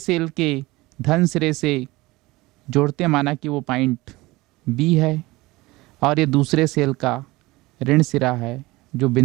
के धन सिरे से जोड़ते, माना कि वो पॉइंट B है, और ये दूसरे सेल का ऋण सिरा है जो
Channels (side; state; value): left; quieter; 20.7 dB